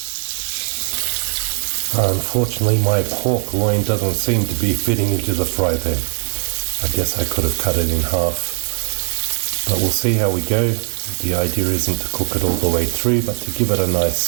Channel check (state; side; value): silent; left; digital silence